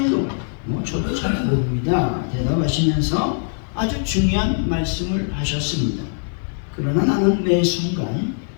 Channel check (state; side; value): silent; right; 65 dB below the other